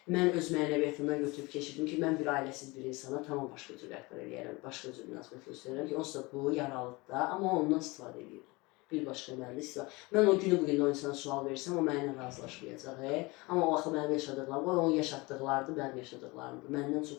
Mən öz mənəviyyatımdan götürüb keçirdim ki, mən bir ailəsiz bir insana tamam başqa cür rəhbər eləyərəm, başqa cür münasibət göstərirəm ki, onsuz da bu yaralıdır da, amma ondan istifadə edir. Bir başqa mənimlə istifadə. Mən o günü bugün o insana sual versəm, o mənimlə razılaşmayacaq. Amma o vaxt mənim yaşadıqlarım, o onun yaşatdıqlarıdır, mənim yaşadıqlarımdır. Məndən çox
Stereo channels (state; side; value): quieter; right; 24.2 dB